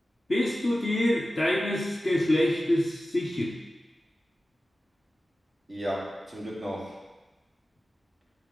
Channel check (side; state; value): both; normal; correlation 0.95